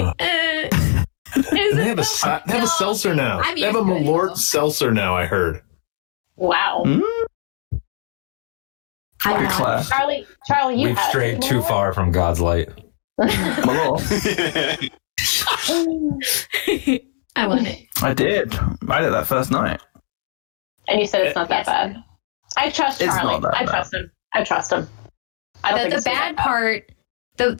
They have a seltzer now. I'm They have a used to it, Malort though. seltzer now, I heard. Wow. Good class. Charlie, you We've had strayed too far from God's light. Malort. I want it. I did. I did that first night. And you said it's not that bad. I trust It's Charlie. not that I bad. trust him. I trust him. I don't think The it's gonna bad be part,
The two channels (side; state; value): right; silent; digital silence